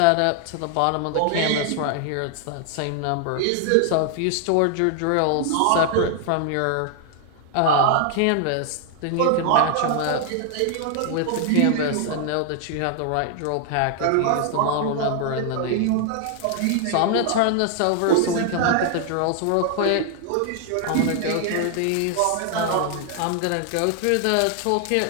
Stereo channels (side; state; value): both; different; correlation 0.00